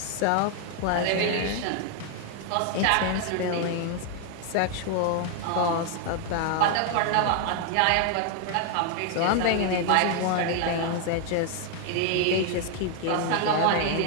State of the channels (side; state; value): both; different; correlation 0.00